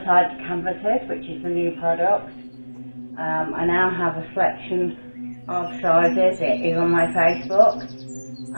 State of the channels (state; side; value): inverted; both; correlation -1.00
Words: side canvases, which is the new product. I now have a selection of sizes. It is on my Facebook.